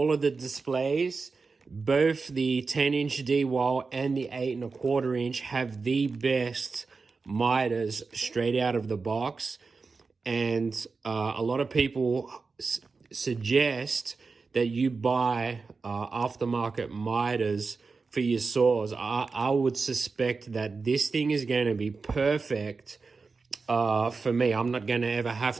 of the displays, both the 10-inch Dewalt and the 8 1/4 inch have the best miters straight out of the box. And a lot of people suggest that you buy aftermarket miters for your saws. I would suspect that this thing is going to be perfect for me. I'm not going to ever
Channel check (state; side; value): quieter; left; 4.4 dB